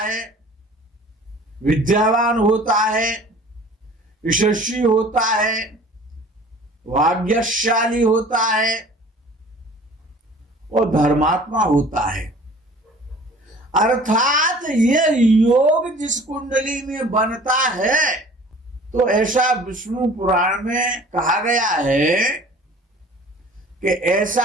विद्यावान होता है, यशस्वी होता है, भाग्यशाली होता है और धर्मात्मा होता है। अर्थात ये योग जिस कुंडली में बनता है, तो ऐसा विष्णु पुराण में कहा गया है कि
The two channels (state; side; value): normal; both; correlation 0.47